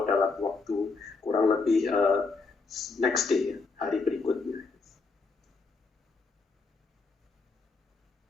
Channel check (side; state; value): right; quieter; 4.1 dB